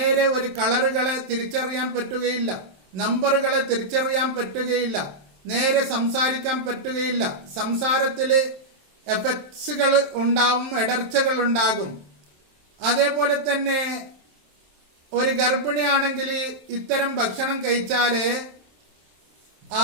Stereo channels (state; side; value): late; left; 27 ms